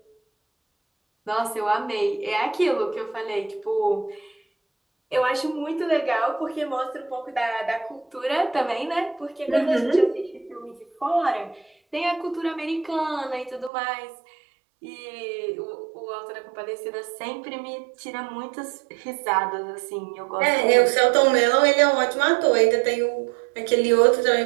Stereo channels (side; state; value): left; drops out; at 13.7 s